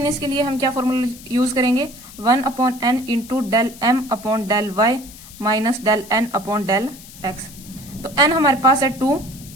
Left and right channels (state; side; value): noise; left; hiss, 18 dB below the sound